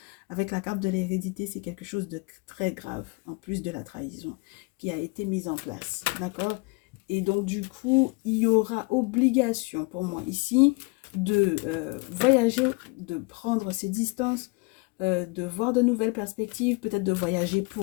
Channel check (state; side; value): quieter; right; 28.2 dB